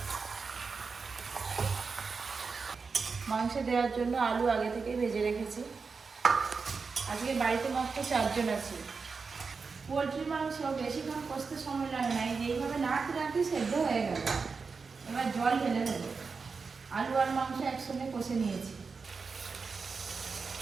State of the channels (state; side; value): quieter; left; 4.9 dB